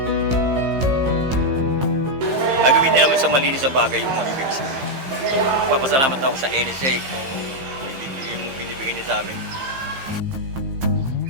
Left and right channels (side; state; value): left; late; 15 ms